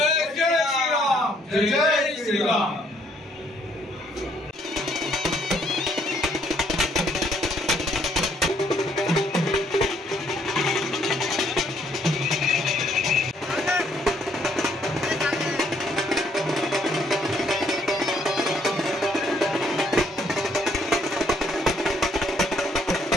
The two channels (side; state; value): both; normal; correlation 0.68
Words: जय श्रीराम, जय जय श्रीराम।